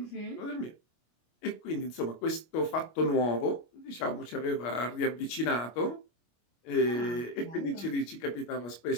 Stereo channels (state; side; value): late; right; 25 ms